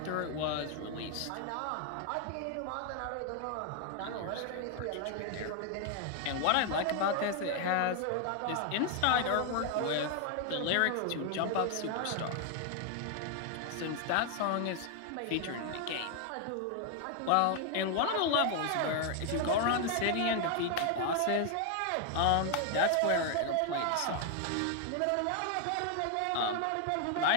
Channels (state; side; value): different; both; correlation 0.00